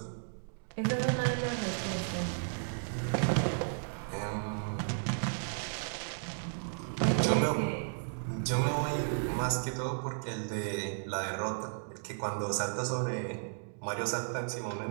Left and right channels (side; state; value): left; silent; digital silence